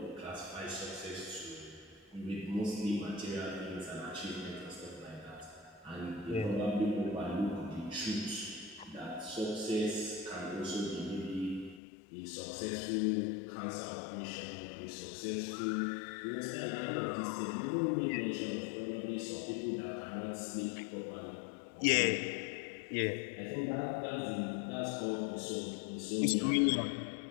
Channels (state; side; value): drops out; right; at 11.8 s